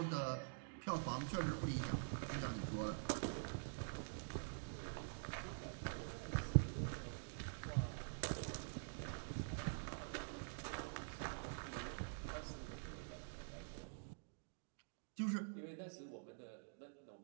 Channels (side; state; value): left; silent; digital silence